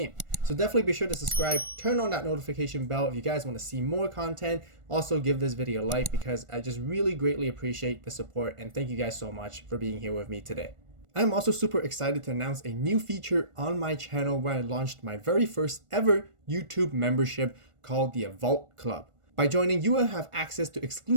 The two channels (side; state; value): left; late; 1.4 ms